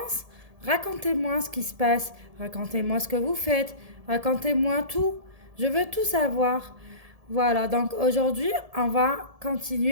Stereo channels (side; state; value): left; late; 1.7 ms